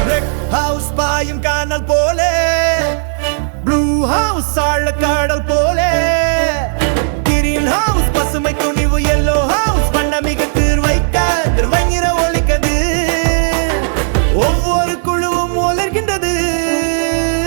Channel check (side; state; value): left; silent; digital silence